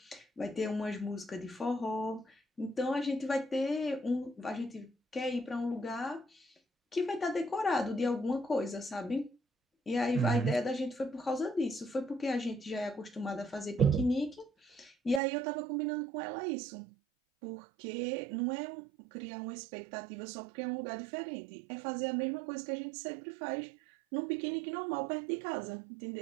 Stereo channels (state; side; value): drops out; left; at 15.2 s